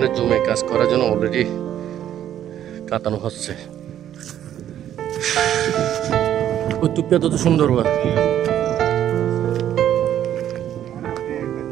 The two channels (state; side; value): quieter; left; 11.0 dB